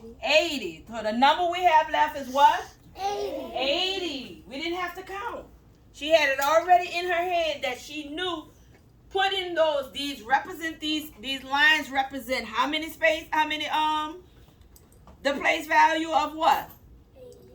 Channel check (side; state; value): both; identical; correlation 1.00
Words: 80. So the number we have left is what? 80. 80. We didn't have to count. She had it already in her head that she knew put in these lines represent how many the place value of what?